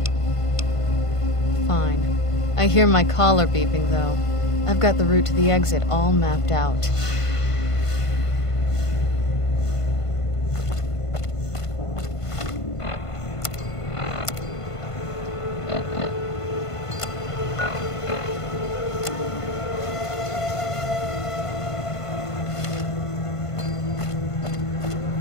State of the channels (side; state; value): right; late; 1.5 ms